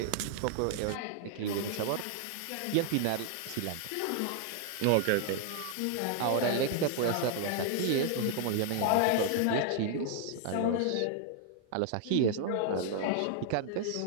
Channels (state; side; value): different; both; correlation 0.00